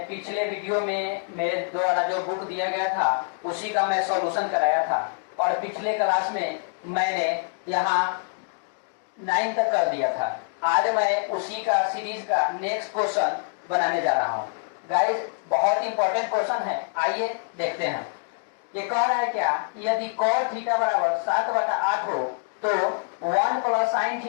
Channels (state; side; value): silent; right; 61 dB below the other